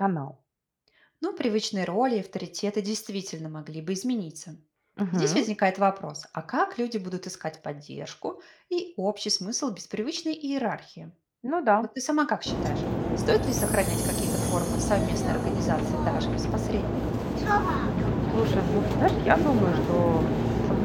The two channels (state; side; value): identical; both; correlation 1.00